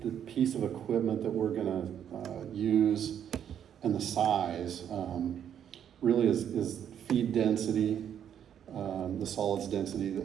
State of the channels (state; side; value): quieter; left; 9.2 dB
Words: piece of equipment that we're gonna use and the size really is feed density, the solids density,